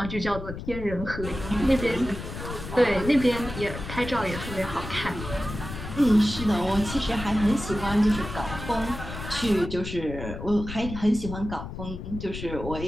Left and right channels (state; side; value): noise; left; rumble, 9 dB below the sound